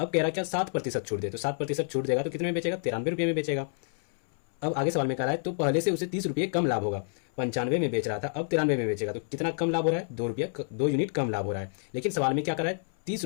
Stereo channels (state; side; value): silent; right; 59 dB below the other